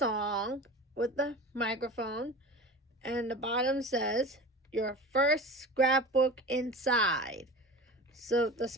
with the microphone, and the bottom says, "Your first scrapbook inside." So the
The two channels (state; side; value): normal; both; correlation 0.34